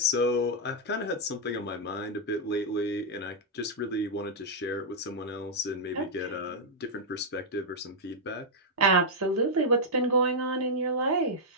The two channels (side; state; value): both; normal; correlation -0.05